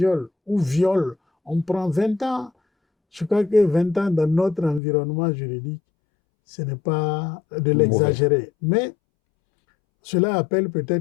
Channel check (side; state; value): right; drops out; at 4.8 s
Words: ou viol, on prend 20 ans. Je crois que 20 ans dans notre environnement juridique, ce n'est pas de l'exagérer. Mais cela appelle